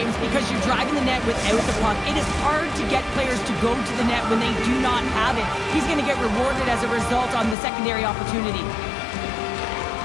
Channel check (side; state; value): right; drops out; at 7.6 s